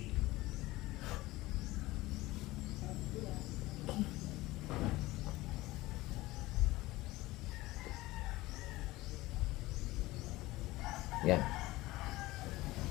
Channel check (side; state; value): right; quieter; 19.1 dB